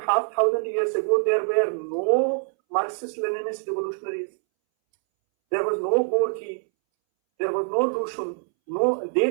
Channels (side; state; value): left; silent; 62 dB below the other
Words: years ago there were no Marxist-Leninist revolutionaries. There was no Gorky, there was no Lushun,